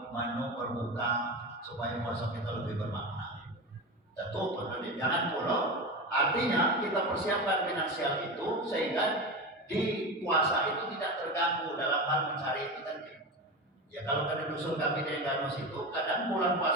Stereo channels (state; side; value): normal; both; correlation 0.23